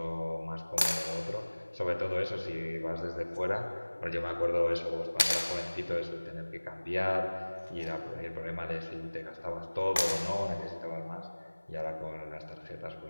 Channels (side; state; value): both; inverted; correlation -1.00